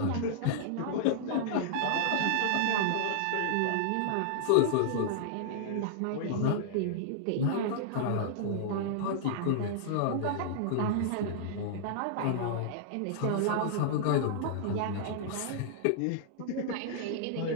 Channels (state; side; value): different; both; correlation -0.01